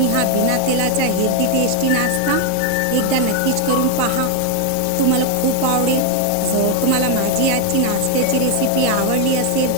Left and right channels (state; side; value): different; both; correlation 0.01